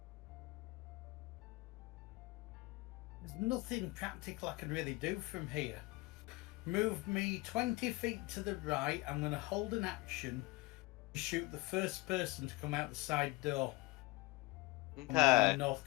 There's nothing practical I can really do from here. Move me 20 feet to the right. I'm going to hold an action to shoot the first person to come out the side door. On the Okay. north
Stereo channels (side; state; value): right; quieter; 22.4 dB